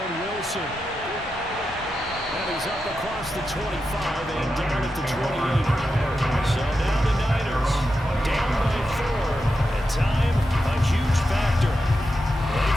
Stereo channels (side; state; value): both; normal; correlation 0.88